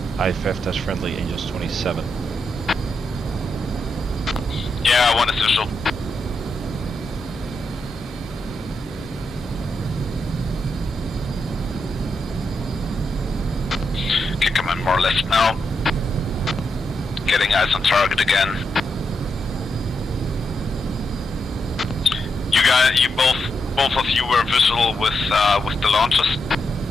IFF test friendly Angels 27. Yeah, 1 is visual. Okay, come on, more left now. Getting eyes on target again. You guys, both of you were visual with the launches.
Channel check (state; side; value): normal; both; correlation 0.84